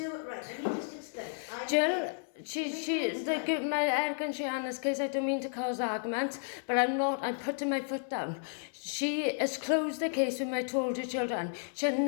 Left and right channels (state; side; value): silent; right; 56 dB below the other